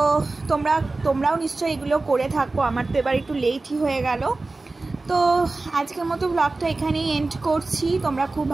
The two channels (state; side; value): quieter; left; 3.3 dB